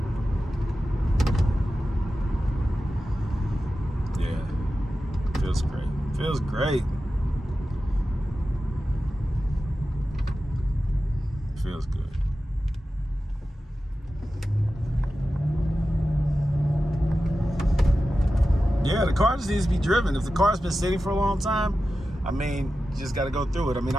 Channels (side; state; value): both; normal; correlation 0.93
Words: Yeah, feels great. Feels great. Feels good. Yeah, the car just needs to be driven. If the car's been sitting for a long time, I mean, you just got to go through it. I mean,